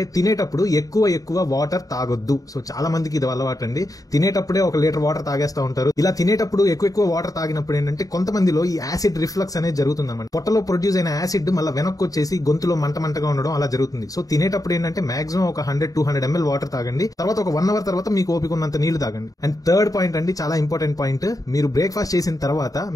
తినేటప్పుడు ఎక్కువ వాటర్ తాగొద్దు. సో చాలా మందికి ఇది అలవాటు అండి. తినేటప్పుడే 1 లీటర్ వాటర్ తాగేస్తా ఉంటారు. ఇలా తినేటప్పుడు ఎక్కువ వాటర్ తాగినప్పుడు ఏంటంటే కొంతమందిలో ఈ యాసిడ్ రిఫ్లక్స్ అనేది జరుగుతుంది అన్నమాట. పొట్టలో ప్రొడ్యూస్ అయిన యాసిడ్ మళ్ళీ వెనక్కి వచ్చేసి గొంతులో మంటగా ఉండడం అలా జరుగుతుంది. సో తినేటప్పుడు ఏంటంటే మాక్సిమం ఒక 100-200 ml వాటర్ తాగండి. తర్వాత ఒక 1 అవర్ తర్వాత మీకు ఓపిక ఉన్నంత నీళ్లు తాగండి. అండ్ థర్డ్ పాయింట్ అండి, చాలా ఇంపార్టెంట్ పాయింట్, మీరు బ్రేక్ఫాస్ట్ చేసిన తర్వాత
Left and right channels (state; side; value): late; right; 0.17 ms